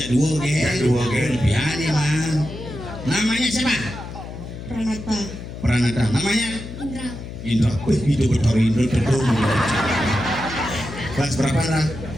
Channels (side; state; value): left; noise; hum, 10 dB below the sound